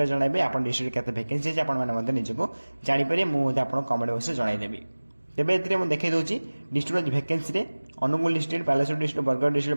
जनइबे आप डिस्ट्रिक्ट केते वैकेंसी अच्छी आपको निजको जापर मुझे आप कमेंट बॉक्स जनईदेवी। तेबे एथिरे मु देखै दोची डिस्ट्रिक्ट वैकेंसी रे Angul district Baleshwar district Bargarh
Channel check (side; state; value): both; inverted; correlation -1.00